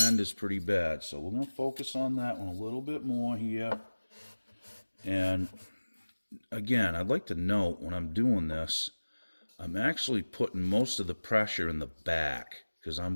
is pretty bad. So we're going to focus on that one a little bit more here. And again, I'd like to note when I'm doing this, I'm actually putting most of the pressure in the back because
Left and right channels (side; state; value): both; inverted; correlation -1.00